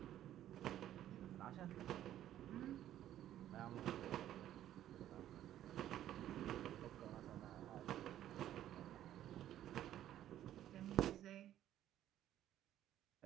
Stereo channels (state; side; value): quieter; left; 12.1 dB